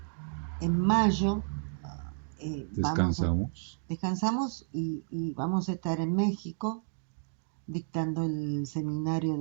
en mayo Descansamos. descansamos y vamos a estar en México dictando el seminario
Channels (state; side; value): silent; left; digital silence